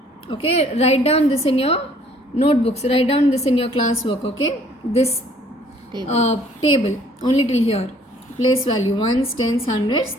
Okay, write down this in your notebooks, write down this in your class work. Okay, this table only till here. Place value ones, tens, hundreds,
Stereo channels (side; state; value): both; normal; correlation 0.59